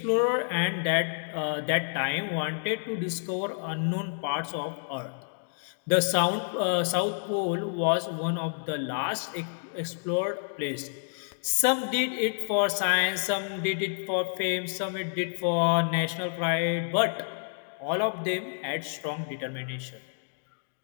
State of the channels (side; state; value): right; silent; digital silence